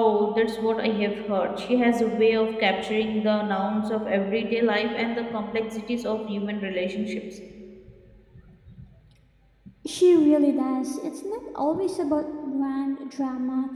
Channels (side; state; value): both; identical; correlation 1.00